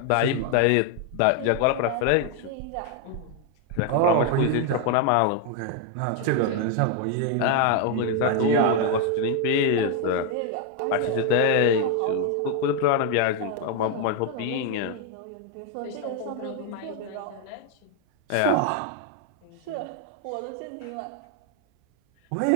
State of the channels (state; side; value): different; both; correlation 0.01